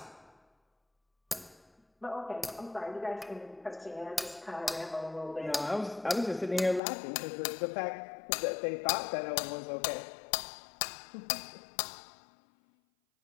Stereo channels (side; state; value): right; drops out; at 6.8 s